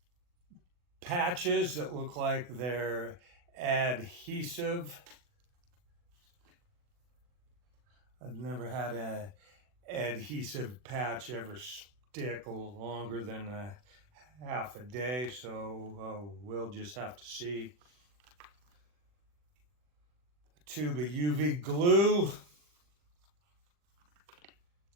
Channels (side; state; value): left; late; 40 ms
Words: patches that look like they're adhesive. I've never had an adhesive patch ever stick longer than a half a day, so we'll just have to see. A tube of UV glue